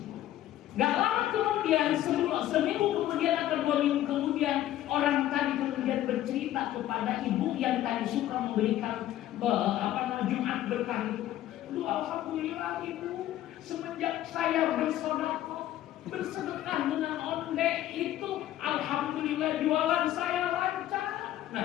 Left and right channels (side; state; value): right; quieter; 13.3 dB